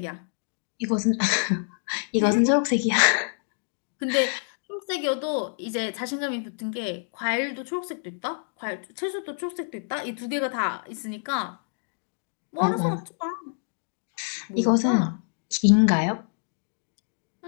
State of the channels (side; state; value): right; silent; digital silence